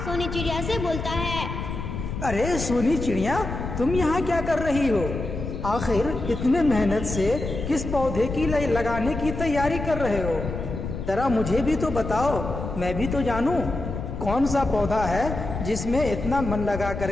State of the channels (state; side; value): noise; left; rumble, 6 dB below the sound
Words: चिड़िया से बोलता है, अरे सोनी चिड़िया, तुम यहाँ क्या कर रही हो? आखिर इतने मेहनत से किस पौधे की लगाने की तैयारी कर रहे हो? जरा मुझे भी तो बताओ, मैं भी तो जानूं कौन सा पौधा है जिसमें इतना मन लगा